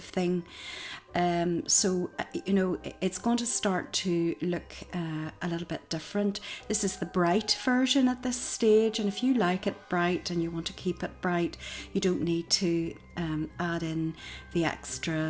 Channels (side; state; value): both; identical; correlation 1.00